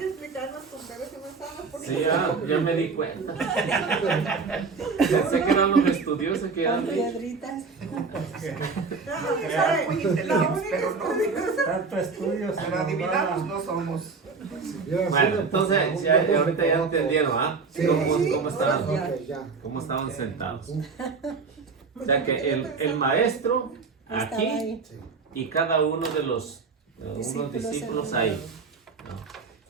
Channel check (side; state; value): left; quieter; 4.7 dB